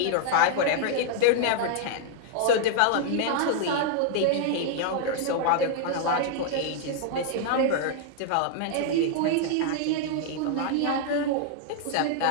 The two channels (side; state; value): both; different; correlation -0.01